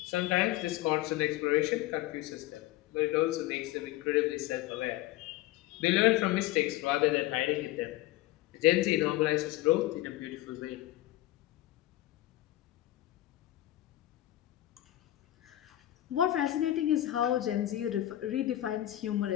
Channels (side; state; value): right; quieter; 15.3 dB